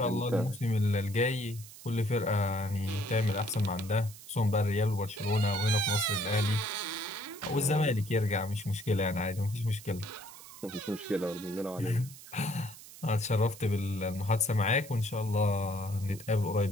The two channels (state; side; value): noise; right; hiss, 17 dB below the sound